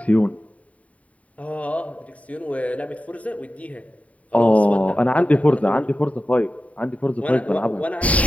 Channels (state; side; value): late; right; 0.068 ms